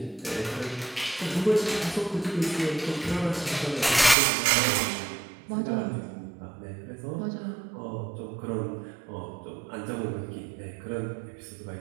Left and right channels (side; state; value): left; drops out; at 4.2 s